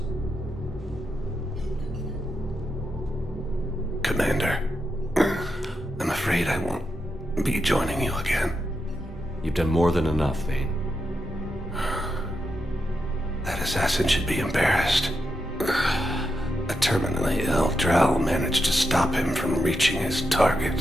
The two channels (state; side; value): normal; both; correlation 0.85